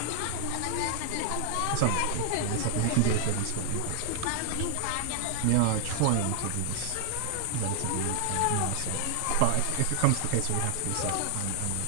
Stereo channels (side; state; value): both; different; correlation -0.01